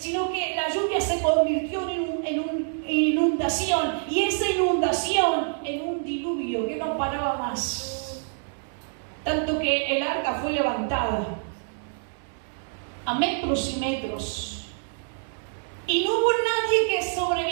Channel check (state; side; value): silent; left; digital silence